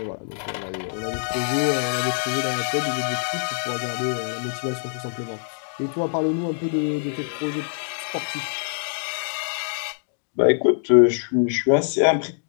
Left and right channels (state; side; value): silent; right; digital silence